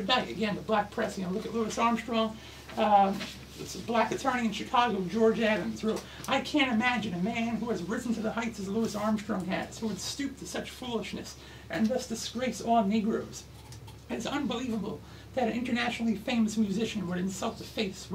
night, again, the black press, look at Louis Armstrong, this black attorney in Chicago, George Adams, wrote, "I can't imagine a man who has risen to the heights as Louis Armstrong has, who would stoop to such foolishness and thus disgrace all Negroes. It's unbelievable that an internationally famous musician would insult the face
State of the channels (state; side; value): identical; both; correlation 1.00